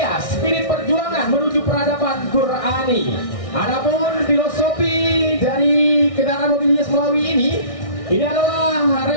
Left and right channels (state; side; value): late; right; 1.6 ms